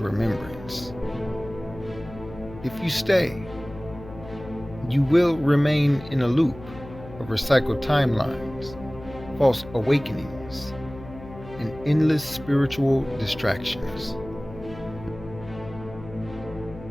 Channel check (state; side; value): noise; left; hum, 15 dB below the sound